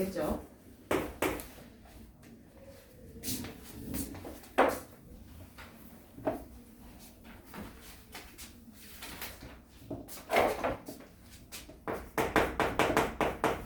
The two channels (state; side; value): identical; both; correlation 1.00